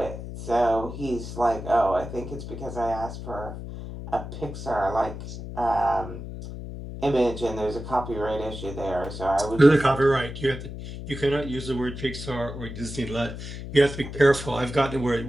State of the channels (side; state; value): left; noise; hum, 9 dB below the sound